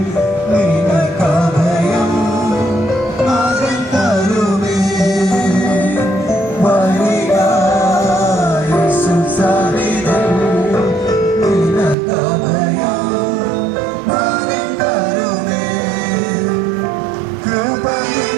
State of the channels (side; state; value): left; drops out; at 12.0 s